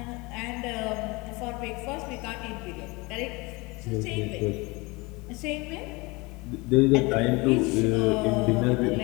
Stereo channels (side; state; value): right; quieter; 25.1 dB